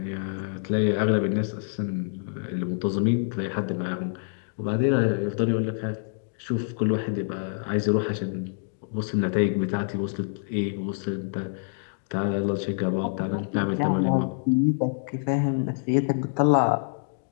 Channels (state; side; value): silent; right; digital silence